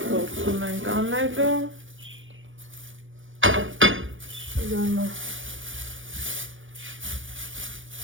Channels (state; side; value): late; left; 0.57 ms